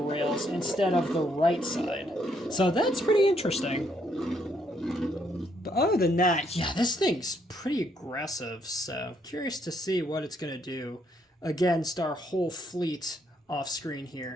rails instead of the right side. So that's pretty interesting. But other than that, yeah, this thing's pretty aggressive, so curious to see what it's going to do against our whole fleet off screen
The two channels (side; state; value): both; normal; correlation 0.72